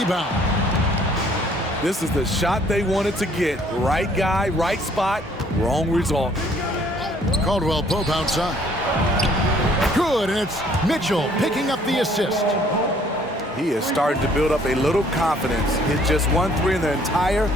This is the shot they wanted to get. Right guy, right spot, wrong result. Caldwell Pope outside. Good, and it's Mitchell picking up the assist. He is starting to build up a little confidence. Hit just 1 3 in the entire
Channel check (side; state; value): both; normal; correlation 0.60